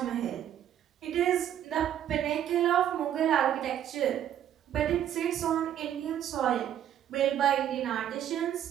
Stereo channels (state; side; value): quieter; left; 10.5 dB